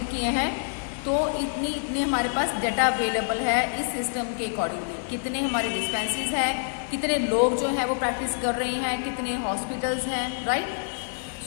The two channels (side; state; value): right; silent; 60 dB below the other